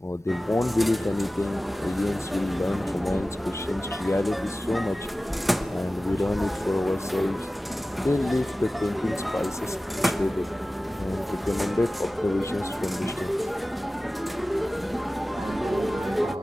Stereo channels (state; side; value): normal; both; correlation 0.96